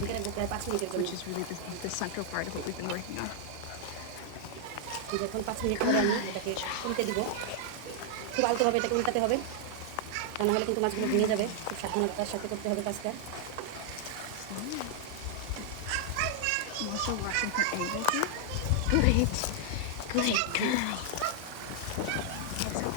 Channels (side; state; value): both; different; correlation 0.00